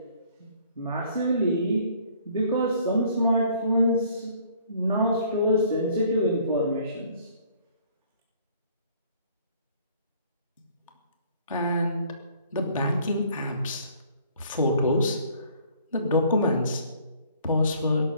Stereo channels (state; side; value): inverted; both; correlation -0.58